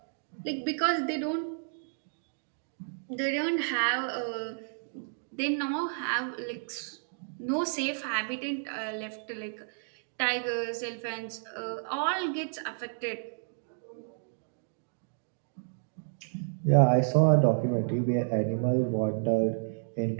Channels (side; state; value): left; silent; digital silence